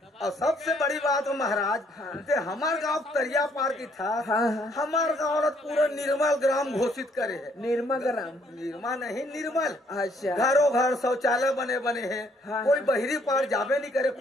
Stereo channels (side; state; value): both; normal; correlation 0.67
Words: और सबसे बड़ी बात हो महाराज ते हमार गांव तरिया पार की था। हाँ हाँ हमार गांव पूरा निर्मल ग्राम घोषित करे है। निर्मल ग्राम निर्मा नहीं निर्मल। अच्छा घरों घर शौचालय बने हैं। हाँ, कोई बहरी पार जाबे नहीं करे